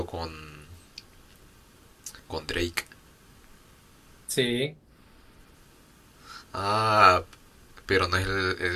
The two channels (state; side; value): identical; both; correlation 1.00